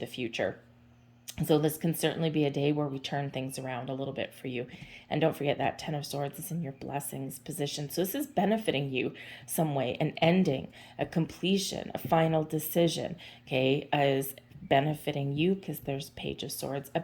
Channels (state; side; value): identical; both; correlation 1.00